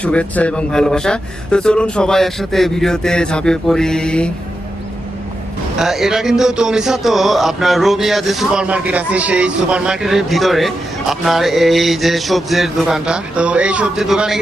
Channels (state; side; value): normal; both; correlation 0.88